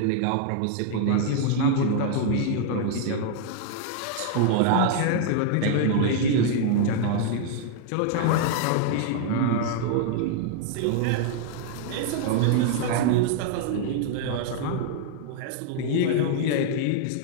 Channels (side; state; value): both; different; correlation -0.01